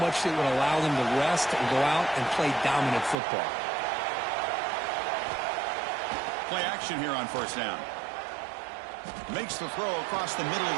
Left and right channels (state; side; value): drops out; left; at 3.2 s